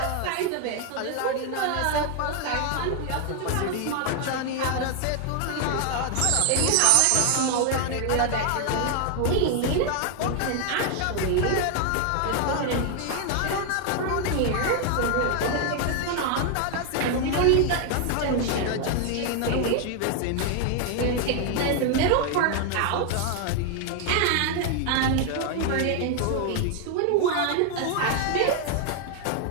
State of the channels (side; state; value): both; different; correlation 0.00